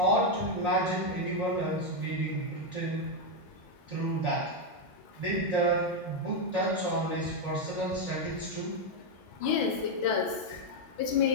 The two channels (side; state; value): both; normal; correlation 0.03